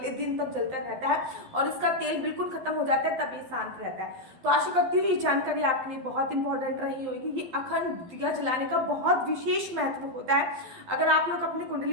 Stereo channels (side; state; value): left; late; 12 ms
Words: दिन तक जलता रहता है और इसका तेल बिल्कुल खत्म हो जाता है, तब ये शांत रहता है। तो आशा करती हूँ ये जानकारी आपके लिए बहुत इंपॉर्टेंट रही होगी। ये अखंड दिया जलाने का बहुत विशेष महत्व होता है। अगर आप लोग अपनी कुंडली